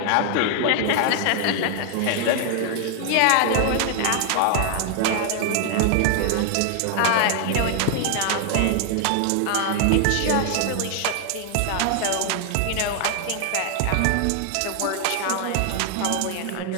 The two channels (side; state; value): both; different; correlation 0.00